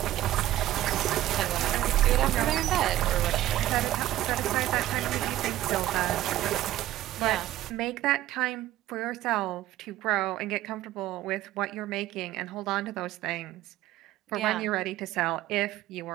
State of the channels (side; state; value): left; quieter; 14.3 dB